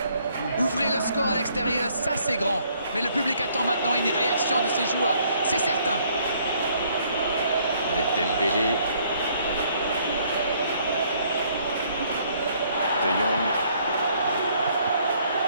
Ouvrez le score à l'extérieur, ça c'est grand. Mais le public attend maintenant une réaction de ses joueurs. C'est certain. Avec Dembélé. De Jong.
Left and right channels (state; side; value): inverted; both; correlation -0.65